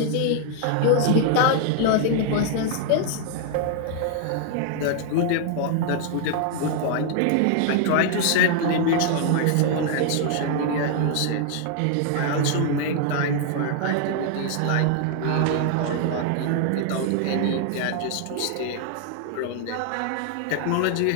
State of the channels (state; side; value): different; both; correlation 0.00